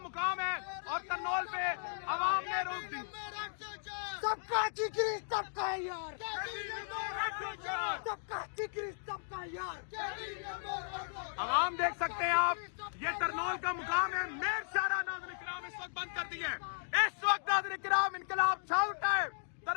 ہے اور ترنول پہ عوام نے روک دی. سب کا ٹکری سب کا یار, سب کا ٹکری سب کا یار. عوام دیکھ سکتے ہیں آپ یہ ترنول کا مقام ہے. میر شاہراہ ناظرین کرام اس وقت بند کر دی ہیں. اس وقت ناظرین کرام انقلاب چھا اٹھا ہے.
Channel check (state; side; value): silent; right; digital silence